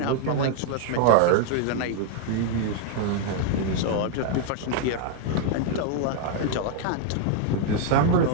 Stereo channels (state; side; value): different; both; correlation 0.00